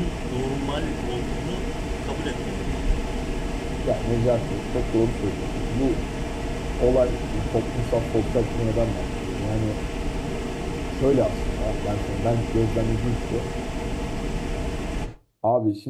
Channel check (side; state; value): both; identical; correlation 1.00